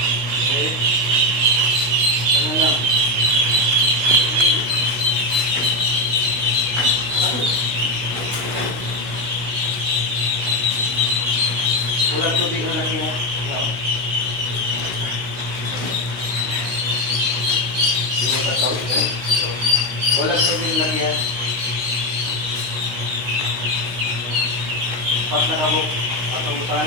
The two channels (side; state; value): left; late; 16 ms